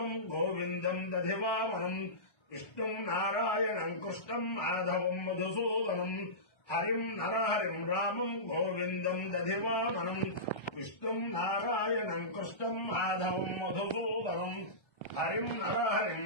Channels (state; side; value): late; right; 1.3 ms